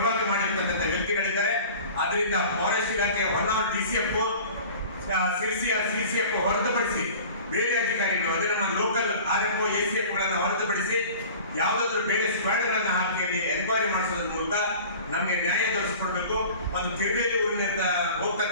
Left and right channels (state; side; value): inverted; both; correlation -0.42